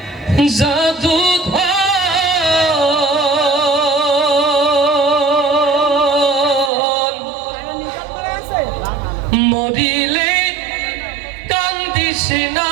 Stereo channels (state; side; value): drops out; left; at 6.7 s